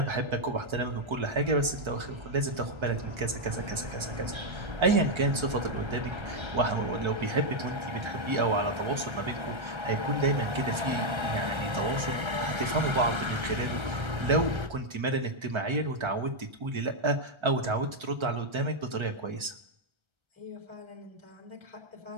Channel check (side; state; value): left; late; 1.3 ms